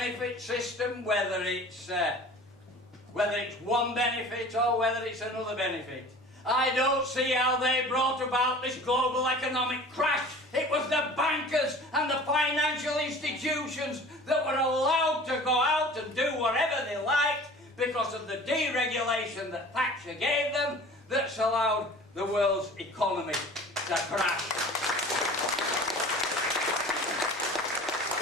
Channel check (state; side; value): normal; both; correlation 0.43